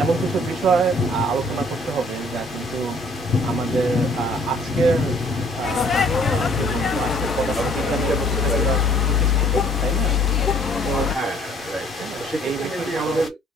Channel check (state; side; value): normal; both; correlation 0.59